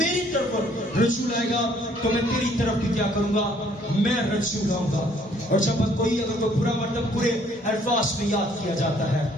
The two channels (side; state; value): both; normal; correlation 0.62